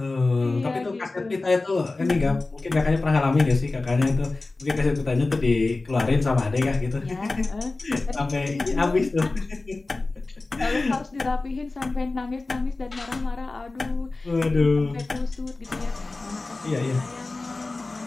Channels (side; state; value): right; quieter; 3.3 dB